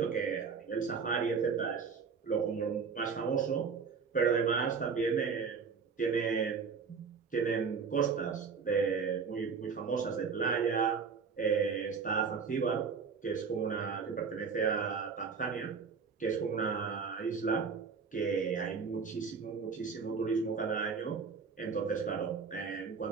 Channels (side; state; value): left; quieter; 5.6 dB